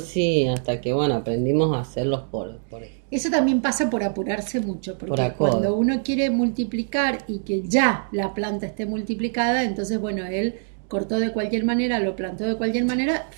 hasta que bueno, aprendimos a hacerlos por eso también pasa por apurarse mucho, porque cuando uno quiere multiplicar y que ya la planta esté multiplicada, entonces bueno, él cortó de cualquier manera, lo plantó de cualquier manera,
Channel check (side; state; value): left; silent; digital silence